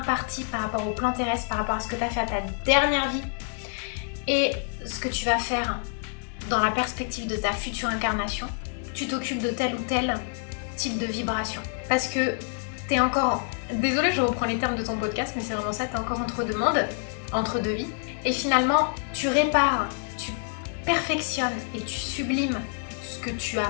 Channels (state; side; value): silent; right; 60 dB below the other